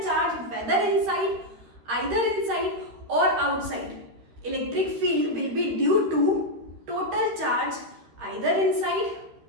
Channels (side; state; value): left; late; 13 ms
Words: charge whether inside, either inside और outside, electric field will be due to total charge either inside